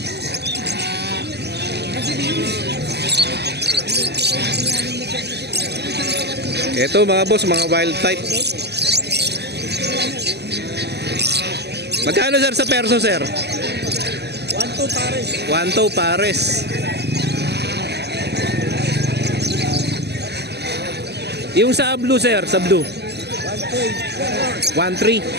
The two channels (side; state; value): left; late; 0.49 ms